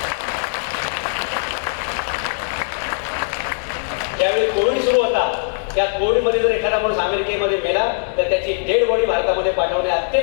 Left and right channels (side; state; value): right; silent; digital silence